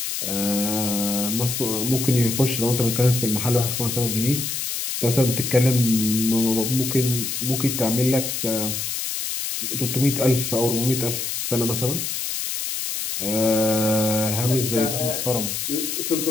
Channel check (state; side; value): noise; left; hiss, 3 dB below the sound